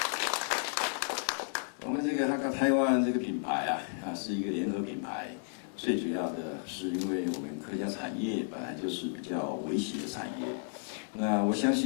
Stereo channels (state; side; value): silent; right; 56 dB below the other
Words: 我们这个哈港台湾这个品牌是一个联合品牌，最主要的是因为我们客家产业本来就是比较微型的产业，那我相